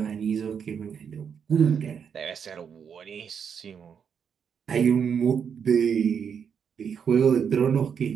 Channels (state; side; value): quieter; left; 7.2 dB